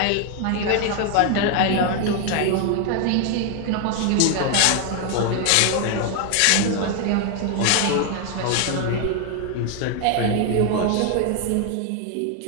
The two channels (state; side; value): different; both; correlation 0.01